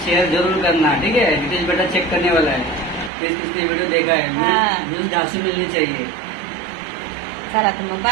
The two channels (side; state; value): left; drops out; at 3.1 s